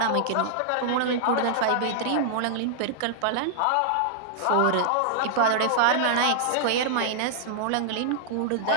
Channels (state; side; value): different; both; correlation -0.01